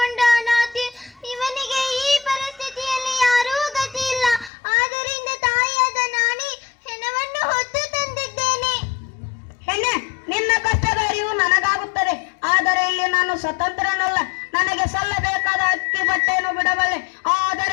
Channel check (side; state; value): right; drops out; at 4.5 s